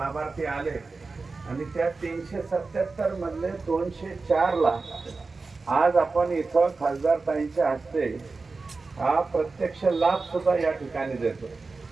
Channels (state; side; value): quieter; left; 4.0 dB